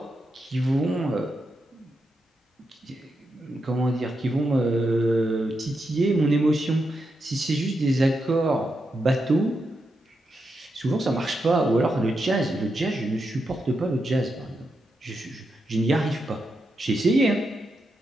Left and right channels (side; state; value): both; normal; correlation 0.85